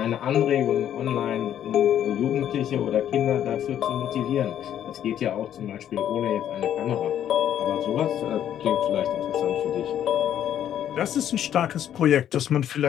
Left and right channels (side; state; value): right; quieter; 10.4 dB